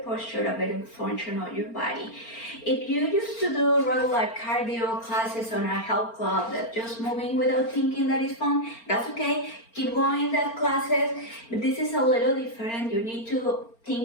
posture, a better function of your body. If you used to do regular cardio classes on a health club that just moving without thinking that is fun, that's okay. Keep going that classes, but this is a little different. You need to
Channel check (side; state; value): right; late; 4.4 ms